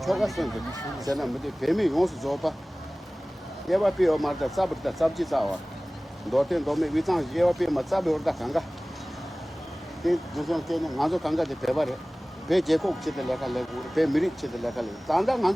초가선데. 제가 뭐지 배미 용수 줘봐. 예바 비어 말다 sab다 sab지 싸워. 도텐 도메 위장 예와피 맞잡이 오르다 간가 그 무슨 때는 나도 간가지 배발해 배 제국 치들 내가 내고 배 미리 치들 내가 내 단다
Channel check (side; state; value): both; normal; correlation 0.98